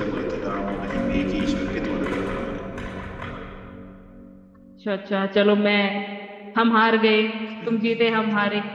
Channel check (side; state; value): both; identical; correlation 1.00